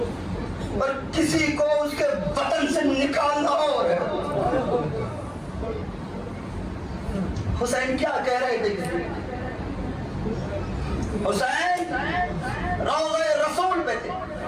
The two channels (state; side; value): identical; both; correlation 1.00